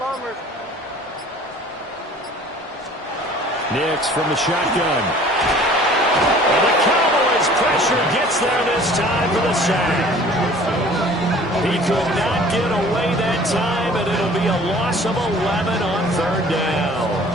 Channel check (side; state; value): both; normal; correlation 0.49